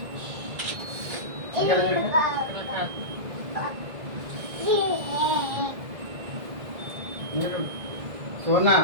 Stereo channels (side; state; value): left; late; 1.8 ms